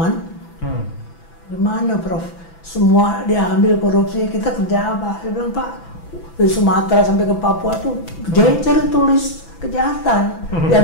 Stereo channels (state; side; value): late; right; 6.0 ms